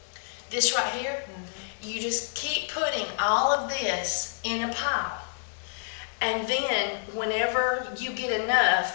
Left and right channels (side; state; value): right; silent; digital silence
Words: This right here, you just keep putting all of this in a pile. And then whenever you get